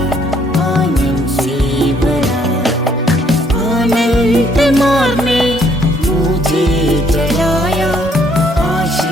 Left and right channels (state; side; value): normal; both; correlation 0.66